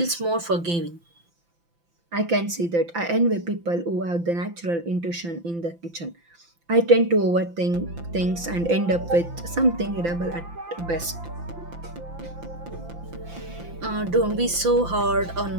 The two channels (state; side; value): late; left; 5.9 ms